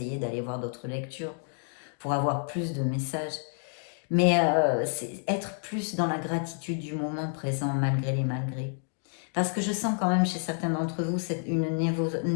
d'aller voir d'autres lectures, pour avoir plus de messages. Mais c'est être plus dans la gratitude du moment présent, malgré les malgrés. Parce que je sens quand même chez certains d'entre vous une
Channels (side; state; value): right; silent; 55 dB below the other